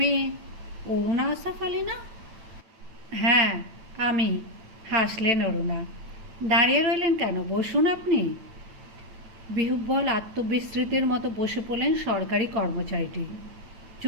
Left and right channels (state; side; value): late; left; 8.9 ms